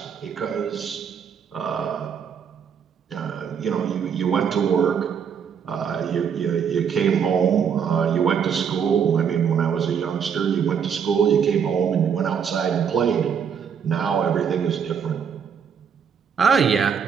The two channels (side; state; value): left; quieter; 7.3 dB